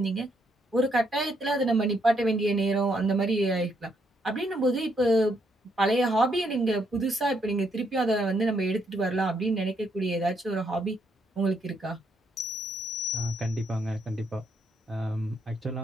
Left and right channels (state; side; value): normal; both; correlation 0.74